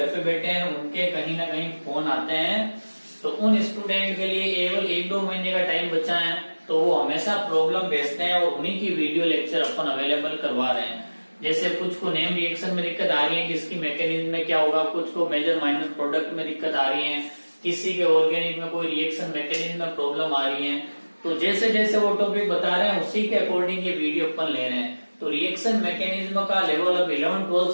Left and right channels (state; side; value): inverted; both; correlation -1.00